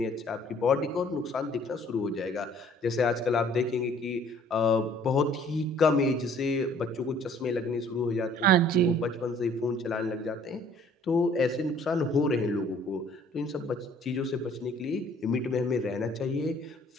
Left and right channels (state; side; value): normal; both; correlation 0.57